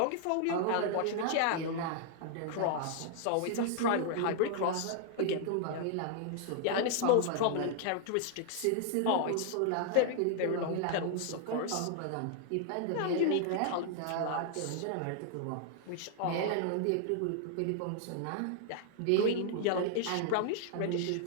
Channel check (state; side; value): different; both; correlation -0.01